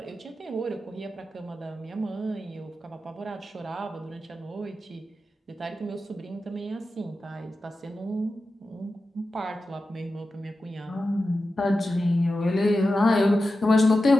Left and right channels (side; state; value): both; normal; correlation 0.92